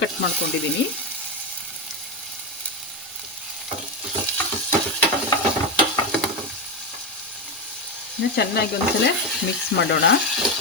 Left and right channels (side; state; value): both; normal; correlation 0.13